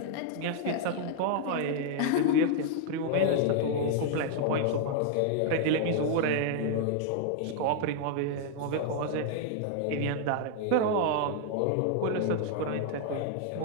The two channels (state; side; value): different; both; correlation 0.00